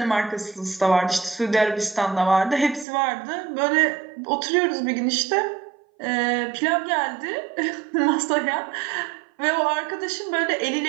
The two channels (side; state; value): left; drops out; at 2.9 s